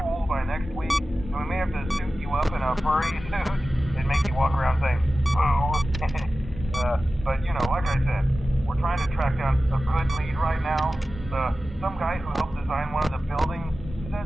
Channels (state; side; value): normal; both; correlation 0.95